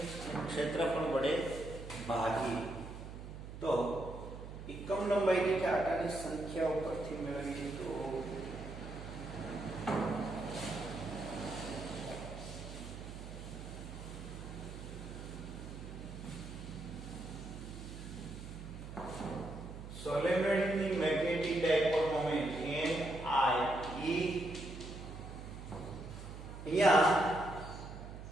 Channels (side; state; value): right; noise; hum, 11 dB below the sound